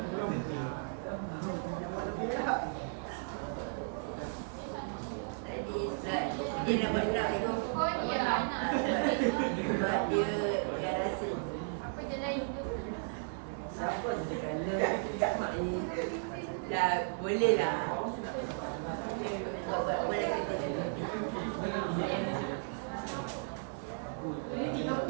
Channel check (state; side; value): silent; left; digital silence